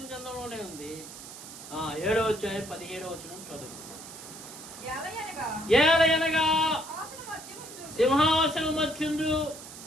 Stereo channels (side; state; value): right; noise; hiss, 14 dB below the sound